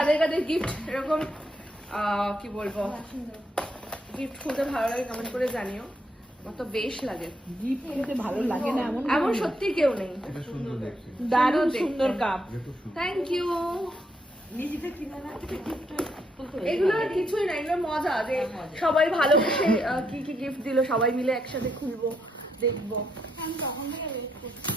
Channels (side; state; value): both; normal; correlation 0.77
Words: কাদের গিফট এরকম কি বলবো সুন্দর। গিফট খুলতে ভালো লাগে কমেন্ট করে জানিও। আমার তো বেশ লাগে। গিফট খেতে ভালো লাগে না এমন এমন সত্যি কেউ নেই। এটা সুন্দর দেখছি। দারুণ দেখতে। সুন্দর কাপ। এটা সুন্দর। Thank you. নিজেতে কিনা না এগুলো আর কিছুই না, এগুলো মজা যে সবাই ভালোবেসে কি কি গিফট দিল সবাই মিলে একসাথে খুলবো, দেখবো। আমি তখন থেকে ওয়েট করছি